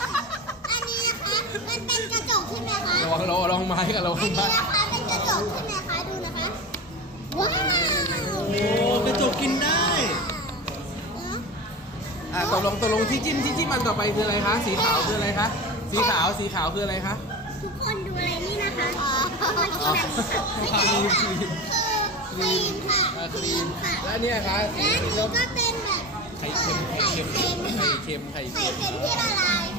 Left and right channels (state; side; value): normal; both; correlation 0.28